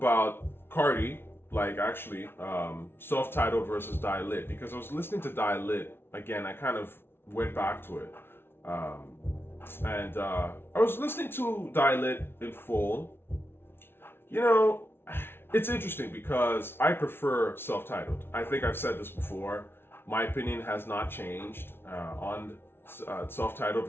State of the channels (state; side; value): late; right; 0.11 ms